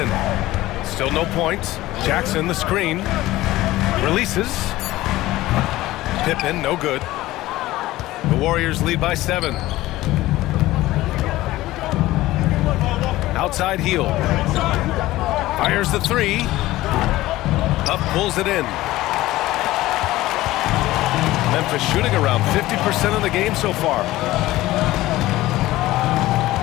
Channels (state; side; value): quieter; right; 17.0 dB